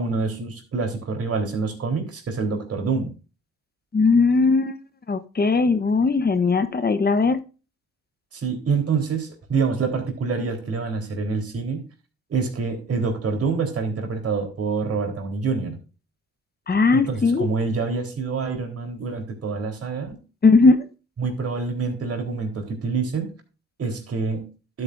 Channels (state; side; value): normal; both; correlation 0.53